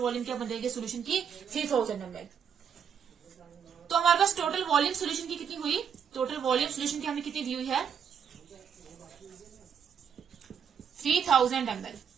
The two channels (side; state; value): left; quieter; 7.5 dB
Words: क्या बन जाएगी सोल्यूशन की 3000 ml। तो हमारे पास टोटल वॉल्यूम सोल्यूशन की कितनी हुई, टोटल वॉल्यूम सोल्यूशन की हमें कितनी दी हुई है 3000 ml,